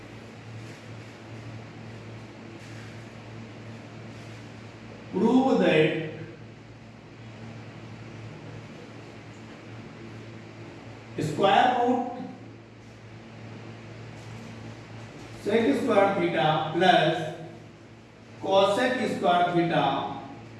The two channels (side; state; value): both; identical; correlation 1.00